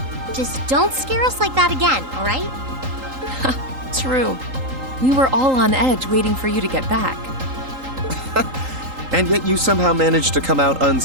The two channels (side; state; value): left; late; 3.8 ms